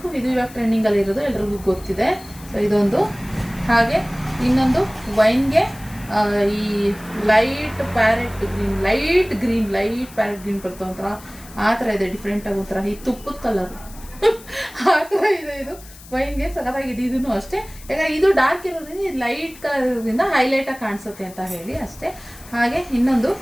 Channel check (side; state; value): left; noise; hiss, 20 dB below the sound